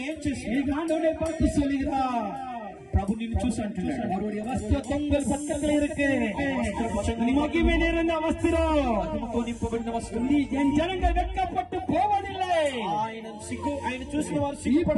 ఏం చేసి நீங்க ஆண்டவரை பார்த்து சொல்லுகிறா, ప్రభు నిన్ను చూసి అంటున్నాడు, அவருடைய வஸ்திரம் தொங்கல் பக்கத்துல இருக்கு, மகிமை நிறைந்த வஸ்திரம், మహిమతో నింపబడిన వస్త్రం. நீ என் ஜனங்கள் வெட்கப்பட்டு போவதில்லை. ఆయన చూసిన వారు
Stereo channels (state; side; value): identical; both; correlation 1.00